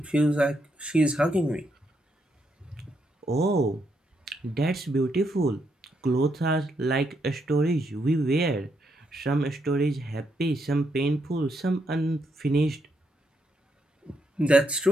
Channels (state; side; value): normal; both; correlation 0.78